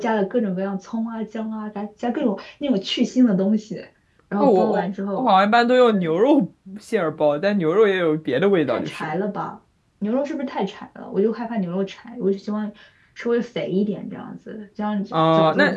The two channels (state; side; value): identical; both; correlation 1.00